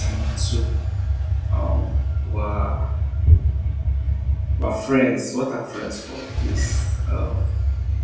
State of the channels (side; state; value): both; identical; correlation 1.00